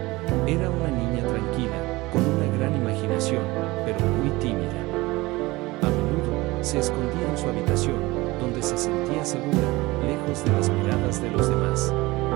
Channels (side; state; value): left; quieter; 21.0 dB